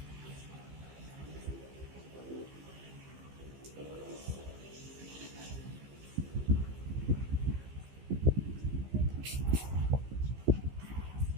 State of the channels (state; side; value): late; left; 15 ms